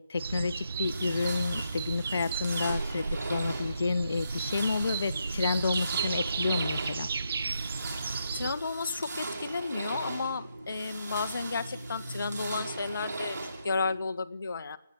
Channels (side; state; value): both; inverted; correlation -0.80